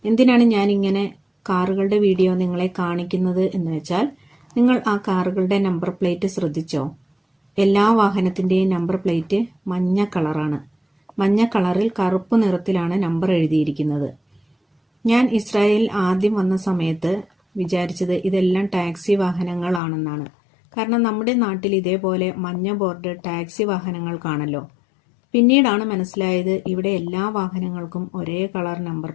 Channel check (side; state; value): right; drops out; at 19.8 s